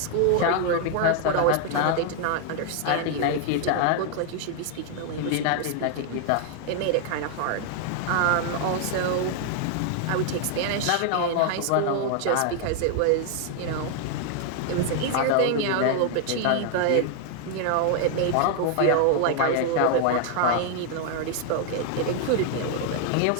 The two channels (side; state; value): both; different; correlation 0.00